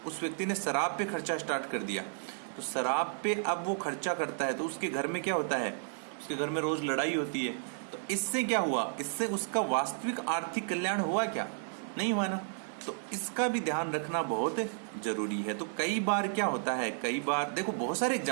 उस व्यक्ति ने शराब पे खर्चा स्टार्ट कर दिया, तो शराब पे अब वो खर्चा करता है, तो उसके घर में क्या होता है, उसके घर में रोज लड़ाई होती है। तो इससे क्या हुआ, इससे उसका वास्तविक आर्थिक कल्याण हुआ क्या, नहीं हुआ ना। तो इसका भी ध्यान रखना बहुत जरूरी है। तो कई बार क्या होता है, कई बार देखो बहुत सारे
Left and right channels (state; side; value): silent; left; 56 dB below the other